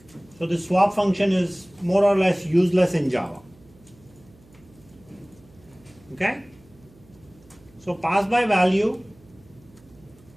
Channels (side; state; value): right; noise; hum, 27 dB below the sound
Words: So the swap function is more or less useless in Java. Okay? So pass by value